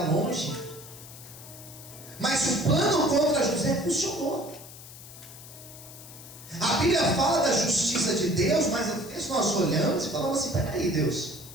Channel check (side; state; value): left; noise; hiss, 16 dB below the sound